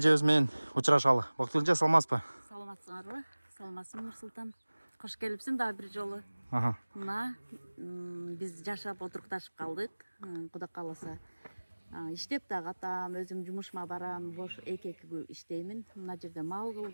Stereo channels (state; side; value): inverted; both; correlation -1.00